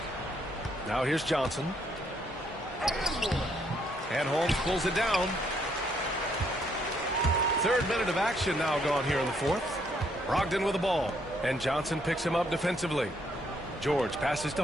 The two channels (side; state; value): both; normal; correlation 0.71